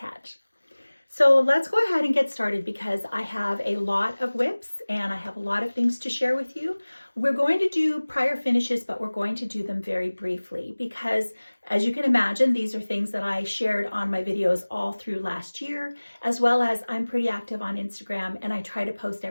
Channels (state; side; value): inverted; both; correlation -1.00